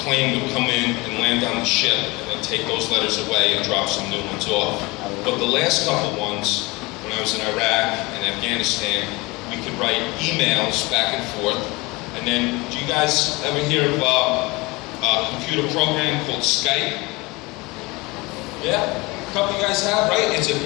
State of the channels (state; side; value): quieter; right; 23.9 dB